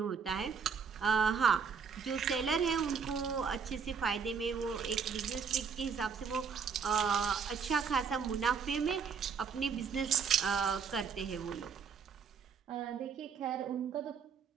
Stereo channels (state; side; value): quieter; left; 6.2 dB